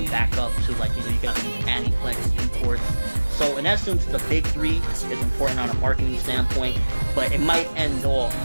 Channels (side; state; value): both; inverted; correlation -1.00